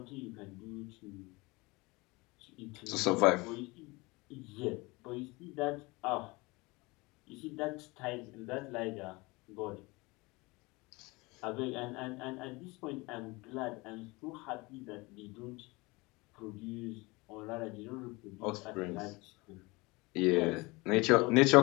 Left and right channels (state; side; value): quieter; right; 24.3 dB